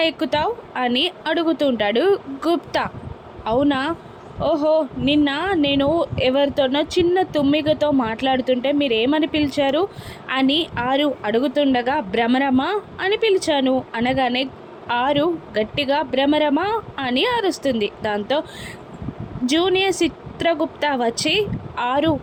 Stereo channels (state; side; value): identical; both; correlation 1.00